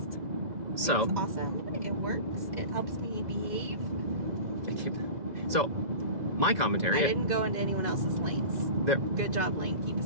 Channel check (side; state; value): left; late; 2.0 ms